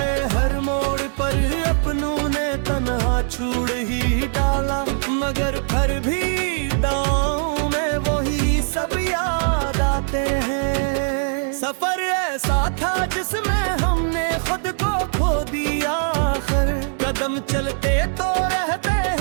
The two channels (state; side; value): silent; left; digital silence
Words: हर मोड़ पर अपनों ने तन्हा छोड़ ही डाला, मगर फिर भी दांव में वही सब याद आते हैं। सफर ऐसा था जिसमें हमने खुद को खो दिया, आखिर कदम चलते तो रहते